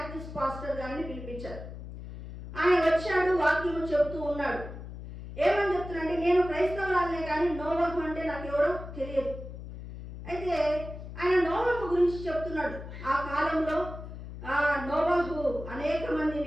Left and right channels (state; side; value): noise; left; hum, 11 dB below the sound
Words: పాస్టర్ గారిని పిలిపించారు. ఆయన వచ్చాడు, వాక్యము చెబుతూ ఉన్నాడు. ఏమని చెప్తున్నాడంటే, నేను క్రైస్తవురాలనే కానీ నోవహు అంటే నాకు ఎవరో తెలియదు. అయితే ఆయన నోవహు గురించి చెప్తున్నాడు. ఆ కాలంలో నోవహు అనేక